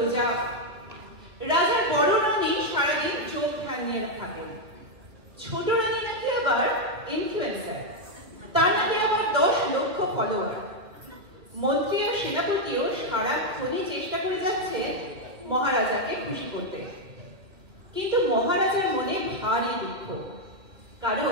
রাজার বড় রানী সারাদিন চোখ ধ্যান নিয়ে থাকেন। ছোট রানী নাকি আবার ইনফ্লুয়েন্সার, তার নাকি আবার 10 লক্ষ ফলোয়ার। মন্ত্রী আর সেনাপতিও সারাক্ষণই চেষ্টা করে যাচ্ছে মহারাজাকে খুশি করতে, কিন্তু মহারাজার মনে ভারী দুঃখ,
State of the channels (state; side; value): late; left; 2.4 ms